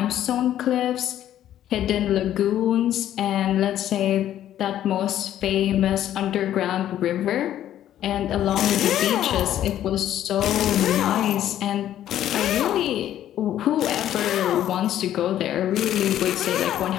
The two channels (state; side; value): quieter; right; 11.7 dB